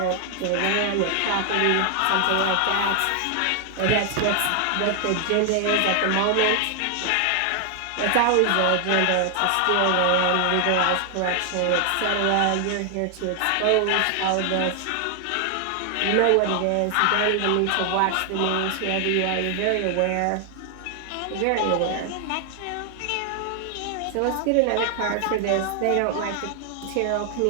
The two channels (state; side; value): different; both; correlation 0.00